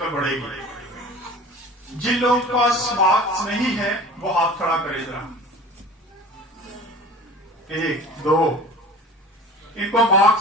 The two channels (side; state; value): both; normal; correlation 0.41